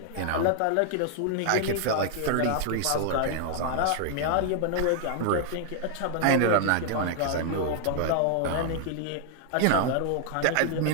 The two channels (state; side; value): different; both; correlation 0.00